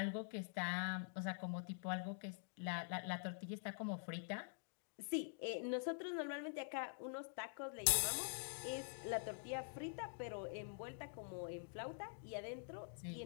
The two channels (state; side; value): silent; right; digital silence